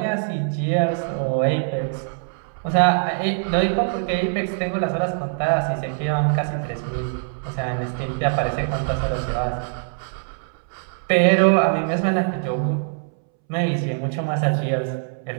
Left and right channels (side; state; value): left; silent; 64 dB below the other